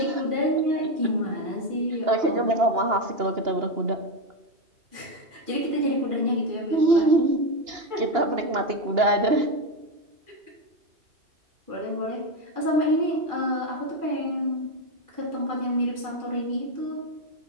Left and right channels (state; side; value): late; left; 2.8 ms